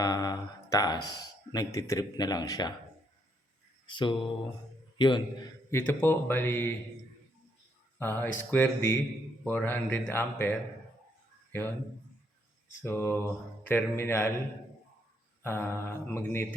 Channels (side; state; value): both; normal; correlation 0.73